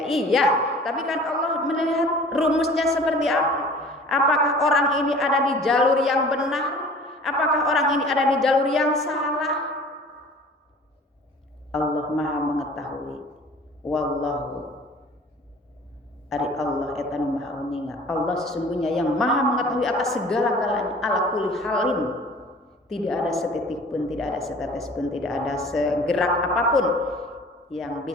Iya, tapi kan Allah melihat rumusnya seperti apa. Apakah orang ini ada di jalur yang benar? Apakah orang ini ada di jalur yang salah? Allah Maha mengetahui. Wallahu ari Allah etanu maha uninga. Allah sesungguhnya yang maha mengetahui atas segala-galanya, ala kulli halin. Tidak ada setitik pun, tidak ada setetes pun, tidak ada segerak apapun yang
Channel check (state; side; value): normal; both; correlation 0.47